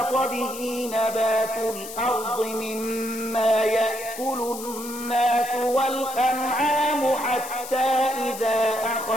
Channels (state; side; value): noise; left; hiss, 11 dB below the sound